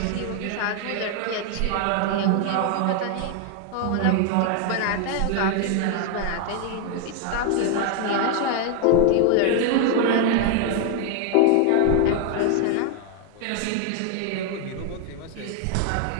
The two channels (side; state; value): both; different; correlation 0.00